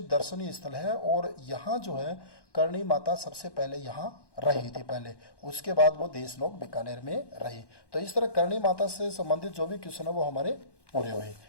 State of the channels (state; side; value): late; right; 1.1 ms